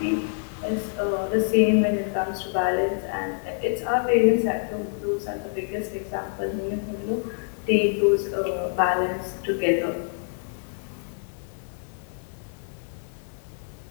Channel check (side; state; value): right; silent; 61 dB below the other